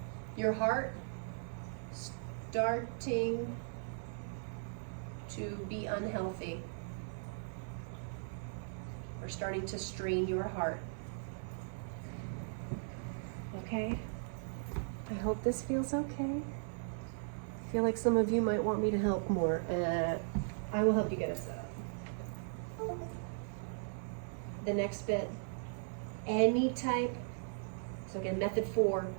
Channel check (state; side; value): silent; left; 53 dB below the other